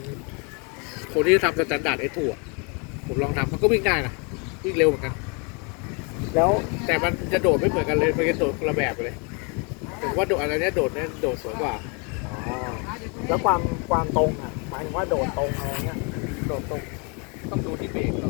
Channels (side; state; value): right; quieter; 33.8 dB